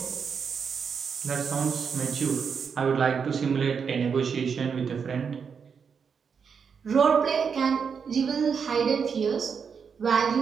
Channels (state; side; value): quieter; left; 6.3 dB